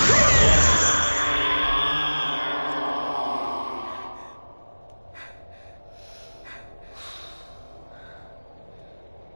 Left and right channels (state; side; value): inverted; both; correlation -1.00